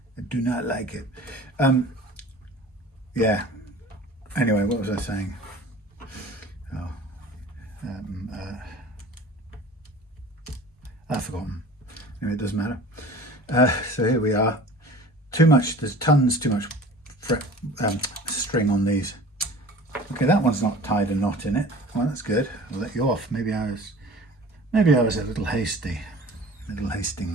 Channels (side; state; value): both; normal; correlation 0.42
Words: I do not like it. Yeah. Anyway, what was I saying? I've forgotten. Anyway, it doesn't matter. So here we are. There's tons too much string on these. Okay, that one's not tied a knot in it. Well, that's good. I'll let you off. Maybe I was a little hasty. Little